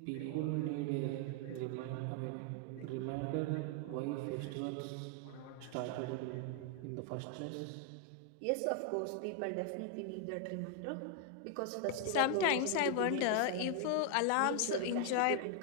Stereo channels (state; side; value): different; both; correlation 0.00